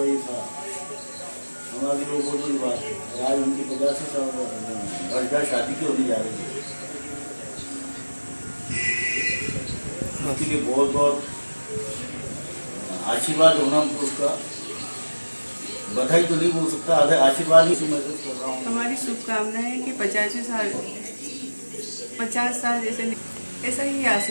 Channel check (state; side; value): inverted; both; correlation -1.00